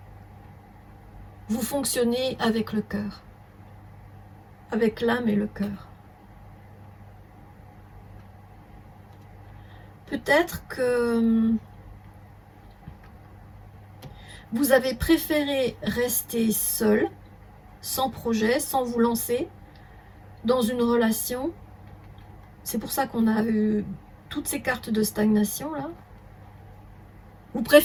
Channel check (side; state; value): both; identical; correlation 1.00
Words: vous fonctionnez avec le cœur, avec l'âme et le cœur. Peut-être que vous avez préféré rester seul, sans projet, sans vous lancer dans une relation. C'est pour ça qu'on a eu toutes ces cartes de stagnation là. Vous